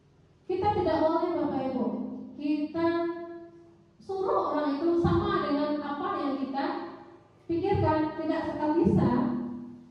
kita tidak boleh Bapak Ibu, kita suruh orang itu sama dengan apa yang kita pikirkan, tidak sekali bisa.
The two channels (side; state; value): both; identical; correlation 1.00